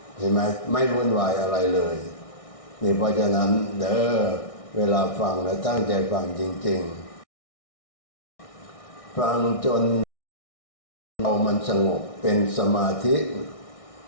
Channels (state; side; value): late; right; 1.6 ms